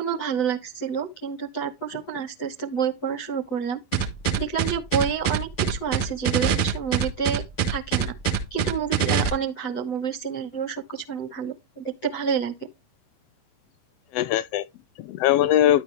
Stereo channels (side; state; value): right; late; 8.0 ms